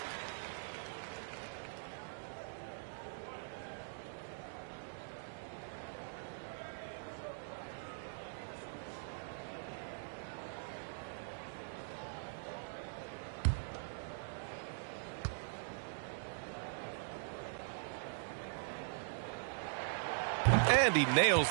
And he nails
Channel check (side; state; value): left; silent; digital silence